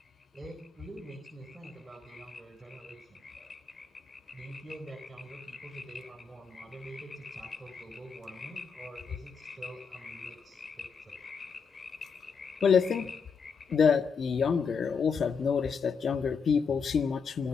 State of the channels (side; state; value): right; quieter; 5.8 dB